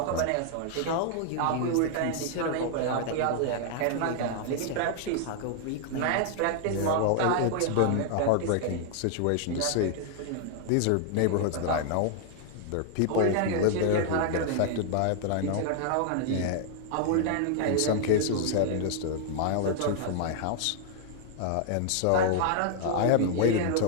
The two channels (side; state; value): both; different; correlation 0.00